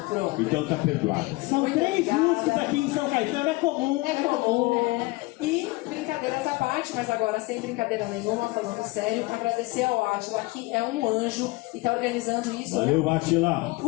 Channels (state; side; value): quieter; right; 22.6 dB